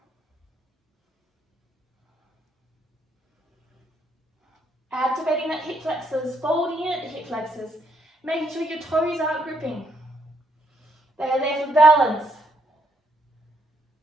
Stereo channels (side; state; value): both; normal; correlation 0.72